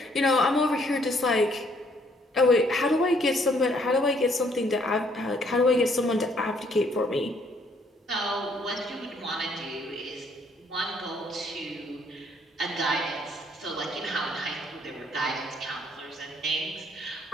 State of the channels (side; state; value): both; normal; correlation 0.66